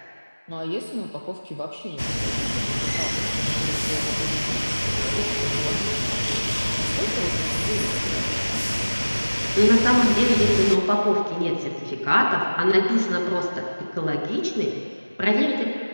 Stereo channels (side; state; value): both; inverted; correlation -1.00